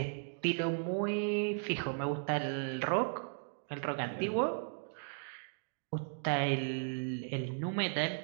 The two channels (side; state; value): left; silent; digital silence